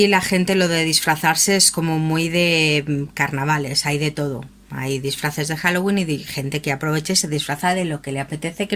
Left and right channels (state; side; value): identical; both; correlation 1.00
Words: la gente lo de disfrazarse es como muy de carnavales, hay de todo. Hay disfraces de Halloween y de gente que aprovecha y se disfraza de lo que le apetece, que